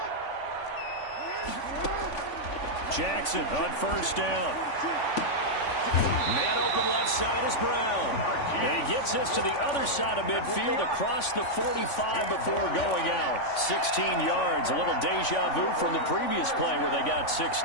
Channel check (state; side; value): late; right; 3.5 ms